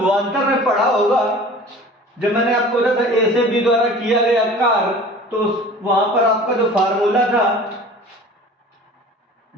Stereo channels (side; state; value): both; normal; correlation 0.43